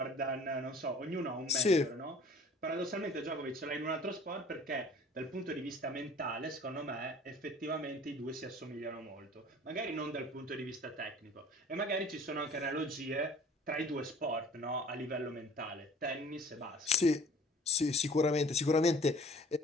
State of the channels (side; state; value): both; normal; correlation 0.49